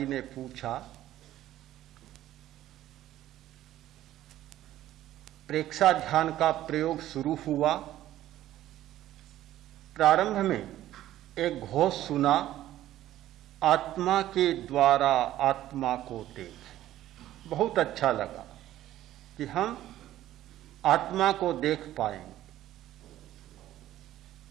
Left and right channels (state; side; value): quieter; left; 13.6 dB